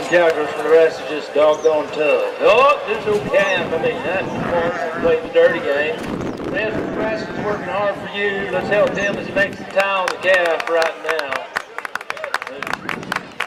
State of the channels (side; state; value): both; identical; correlation 1.00